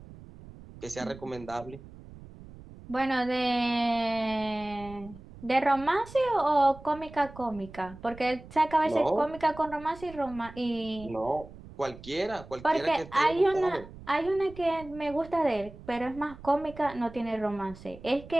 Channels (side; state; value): right; noise; rumble, 17 dB below the sound